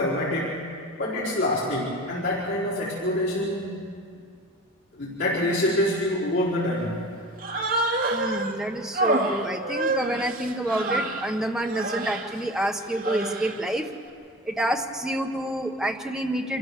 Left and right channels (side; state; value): both; normal; correlation 0.34